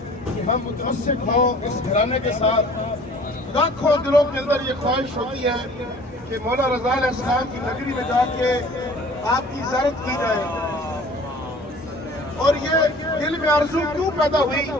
کہ ہم متمسک ہوں اس گھرانے کے ساتھ. لاکھوں دلوں کے اندر یہ خواہش ہوتی ہے کہ مولا رضا علیہ السلام کی نگری میں جا کے آپ کی زیارت کی جائے. اور یہ دل میں آرزو کیوں پیدا ہوئی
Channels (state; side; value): normal; both; correlation 0.49